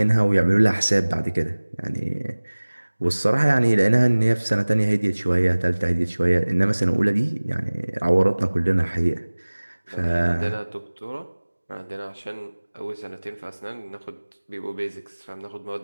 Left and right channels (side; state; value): both; inverted; correlation -1.00